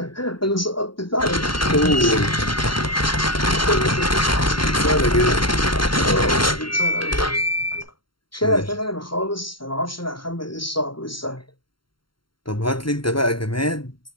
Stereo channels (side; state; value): right; late; 0.73 ms